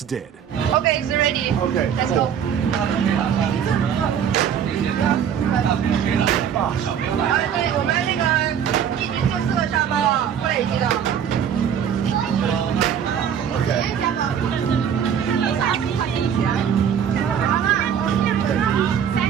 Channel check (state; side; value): quieter; left; 8.5 dB